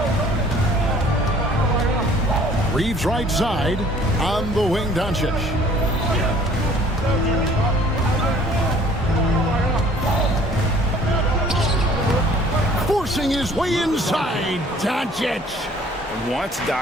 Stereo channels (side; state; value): both; normal; correlation 0.54